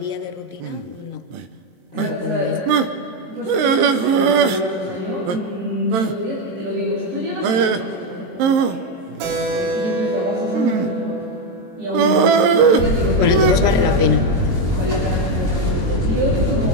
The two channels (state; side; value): late; left; 23 ms